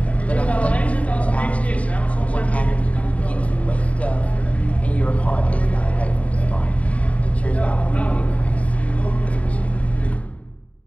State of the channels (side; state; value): right; late; 0.066 ms